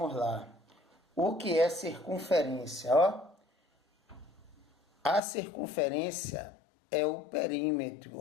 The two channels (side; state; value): right; drops out; at 5.2 s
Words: lá. O que é circunferência? A circunferência é o perímetro,